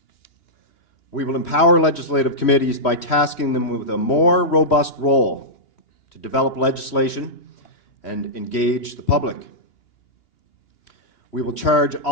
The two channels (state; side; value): late; right; 3.1 ms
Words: We will empower legislative committees by tasking them with a more robust role to develop legislation and engage the public. We will charge